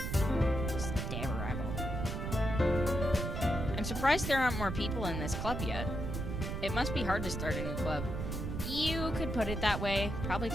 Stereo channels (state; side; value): noise; right; rumble, 3 dB below the sound